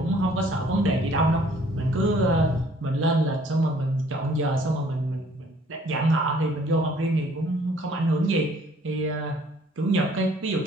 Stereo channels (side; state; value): both; normal; correlation 0.59